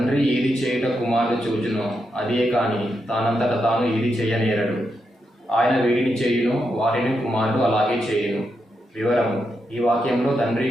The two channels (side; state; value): both; normal; correlation 0.84